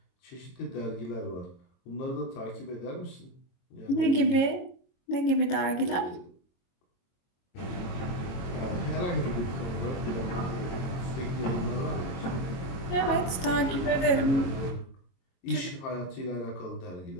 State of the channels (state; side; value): late; right; 22 ms